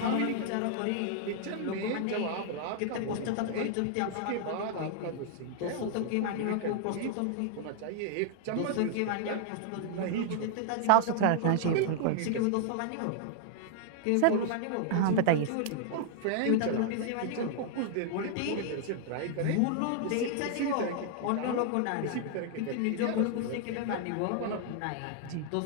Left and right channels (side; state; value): both; different; correlation 0.00